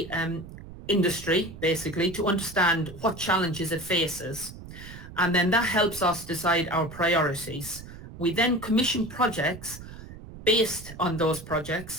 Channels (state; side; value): noise; right; rumble, 14 dB below the sound